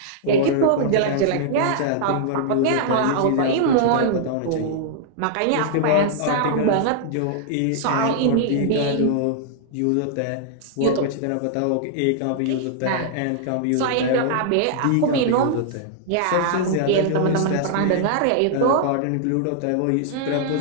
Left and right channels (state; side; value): different; both; correlation -0.01